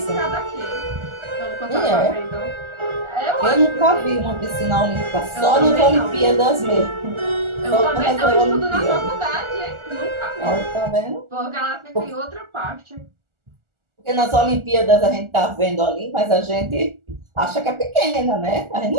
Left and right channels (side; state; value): left; late; 1.4 ms